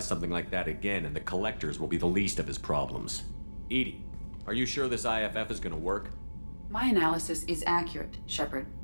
something like that again, and the collectors will be the least of his problems. EDI, are you sure this IFF is gonna work? My analysis is accurate, Shepard.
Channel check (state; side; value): inverted; both; correlation -1.00